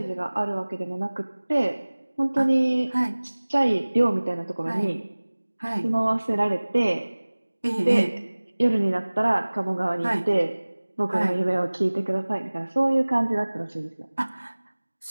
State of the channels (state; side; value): inverted; both; correlation -1.00